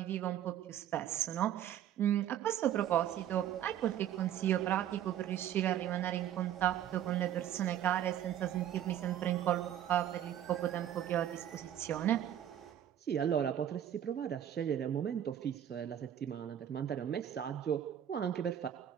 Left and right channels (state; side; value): quieter; left; 10.7 dB